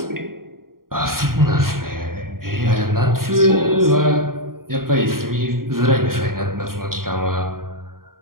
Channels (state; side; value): late; left; 0.91 ms